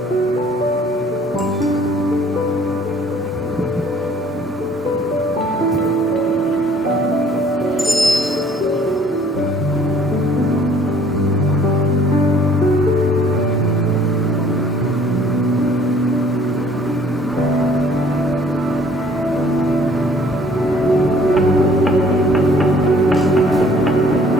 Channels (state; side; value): normal; both; correlation 0.57